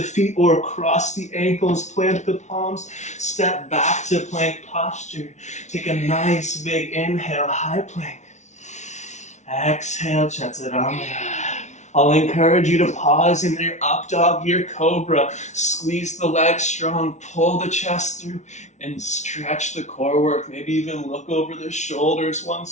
feet or across the ankles, plant the palms, step back to plank posture. Take a nice big inhale, high plank. Exhale, chaturanga. I'll encourage you to pause in your up dog, your cobra. Squeeze the legs strong, pull the chest through, and stretch the core work. Maybe even look over the shoulders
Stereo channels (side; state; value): right; late; 0.33 ms